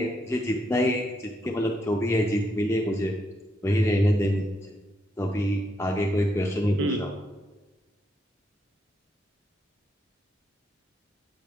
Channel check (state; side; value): normal; both; correlation 0.79